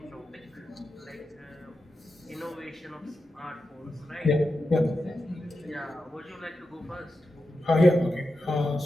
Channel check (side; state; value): both; normal; correlation 0.90